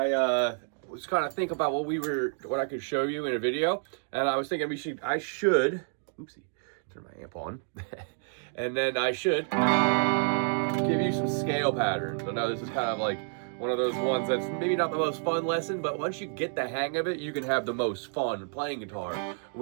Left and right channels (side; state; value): left; silent; 57 dB below the other